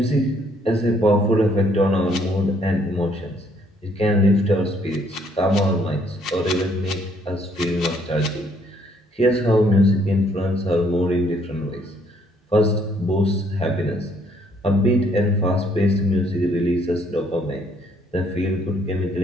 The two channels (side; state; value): both; normal; correlation 0.66